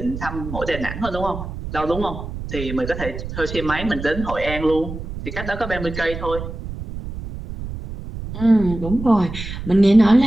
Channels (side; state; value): right; noise; rumble, 9 dB below the sound